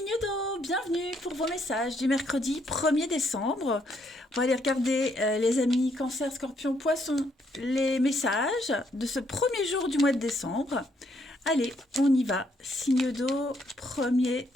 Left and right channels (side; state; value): both; normal; correlation 0.72